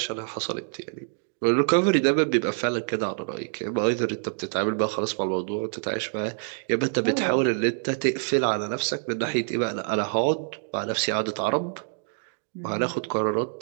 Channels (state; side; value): silent; left; digital silence